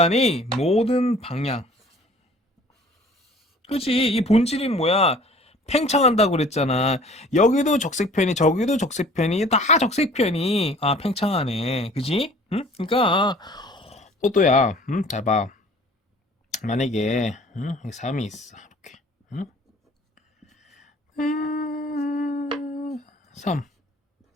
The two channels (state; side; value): normal; both; correlation 0.50